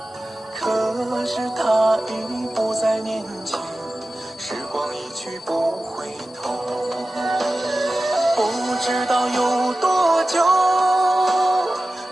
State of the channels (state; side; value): normal; both; correlation 0.95